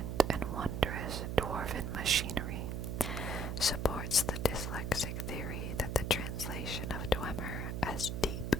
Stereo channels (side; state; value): right; noise; hum, 3 dB below the sound